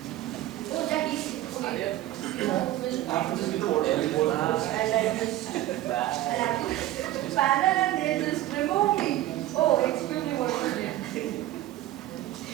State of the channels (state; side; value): quieter; left; 14.8 dB